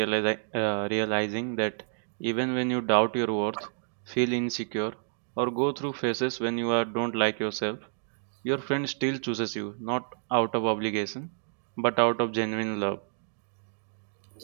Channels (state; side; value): silent; left; digital silence